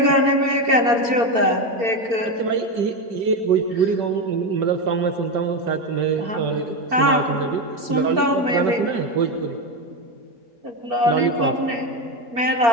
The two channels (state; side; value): late; left; 4.3 ms